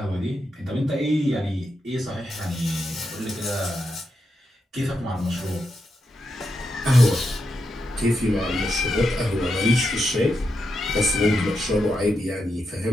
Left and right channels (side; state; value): both; normal; correlation 0.85